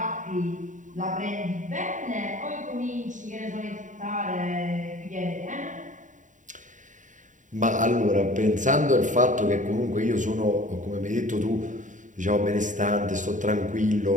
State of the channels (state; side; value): late; left; 0.37 ms